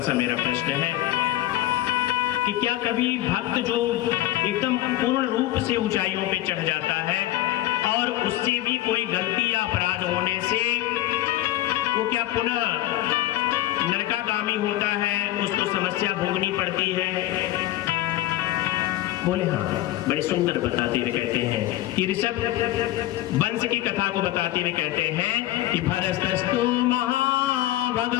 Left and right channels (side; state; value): right; quieter; 15.2 dB